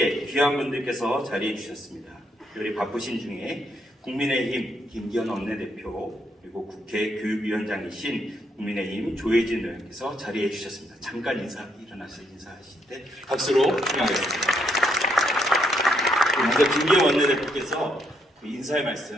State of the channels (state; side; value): normal; both; correlation 0.74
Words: 귀한 분들께서 자리해 주셨습니다. 특별히 바쁘신 중에 국민의힘 김기현 원내대표, 그리고 국회 교육위원장이신 국민의힘 조혜진 의원께서 자리해 주셨습니다. 잠깐 일어나서 인사하실 때 박수로 환영하겠습니다. 먼저 김기현 원내대표께서 인사의